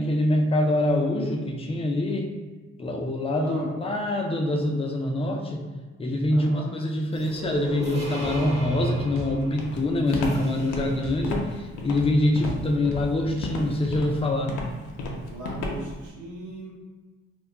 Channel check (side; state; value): both; normal; correlation 0.73